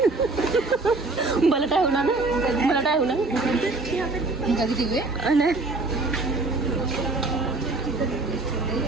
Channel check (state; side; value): quieter; left; 3.3 dB